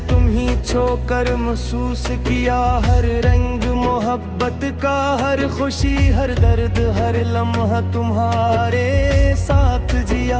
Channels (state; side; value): identical; both; correlation 1.00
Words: तुम ही छोकर महसूस किया हर रंग मोहब्बत का, हर खुशी हर दर्द हर लम्हा तुम्हारे साथ